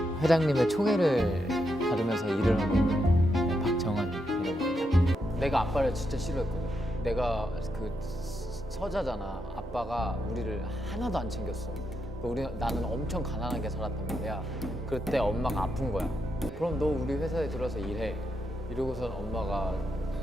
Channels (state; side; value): normal; both; correlation 0.82